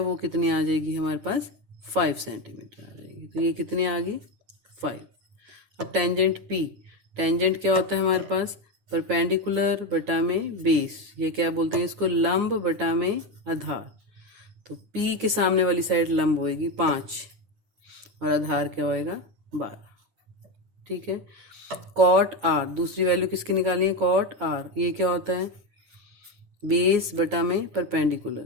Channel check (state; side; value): late; left; 9.6 ms